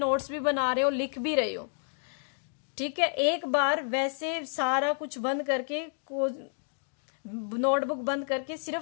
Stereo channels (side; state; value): right; silent; digital silence